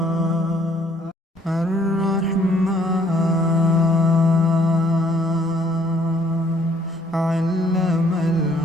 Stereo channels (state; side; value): normal; both; correlation 0.64